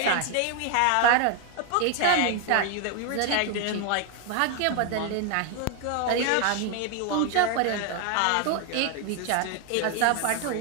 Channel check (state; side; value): different; both; correlation 0.01